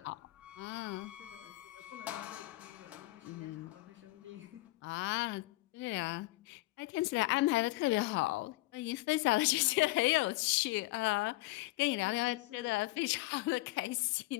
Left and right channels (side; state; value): right; quieter; 20.5 dB